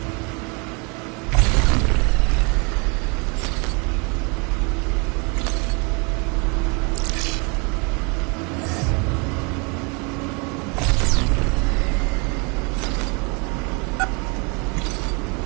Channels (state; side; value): quieter; left; 31.9 dB